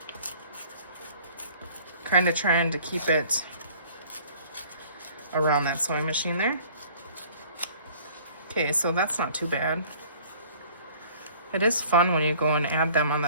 Kind of trying to keep it around that sewing machine there. Okay, so that's not too bad. It is fun when you go and add them on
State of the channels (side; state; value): both; inverted; correlation -0.52